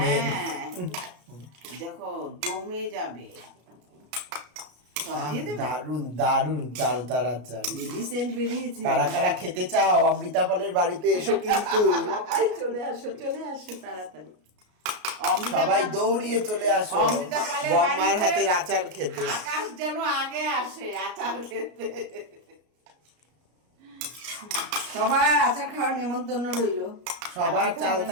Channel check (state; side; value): late; left; 33 ms